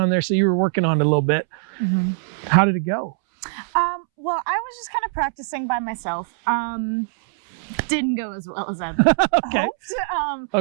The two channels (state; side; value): silent; left; 64 dB below the other